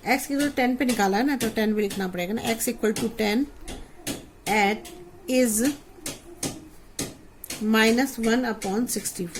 x की 10 पे निकाला है ना, तो 10 भी लिखना पड़ेगा ना, x equal to 10 at is minus 1 upon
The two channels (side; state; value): both; identical; correlation 1.00